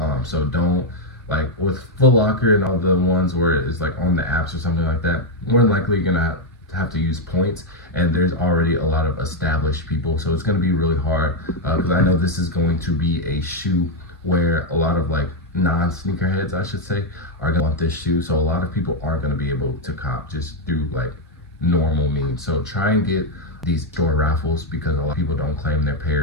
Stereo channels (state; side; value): normal; both; correlation 0.02